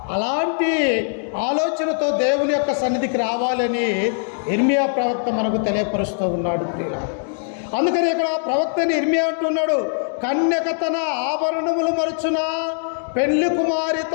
అలాంటి ఆలోచనతో దేవుని యొక్క సన్నిధికి రావాలని ఇర్మియా ప్రవక్త మనకు తెలియపరుస్తూ ఉన్నాడు ప్రియులారా. అందుకని ఇక్కడ ప్రవక్తని ఇర్మియా అంటున్నాడు, కన్యక తన ఆభరణములు మరుచునా, పెళ్లి కుమారి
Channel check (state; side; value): silent; right; digital silence